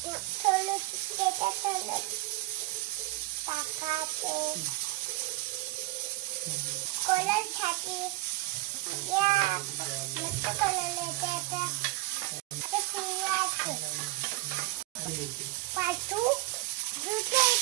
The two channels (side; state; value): left; quieter; 19.6 dB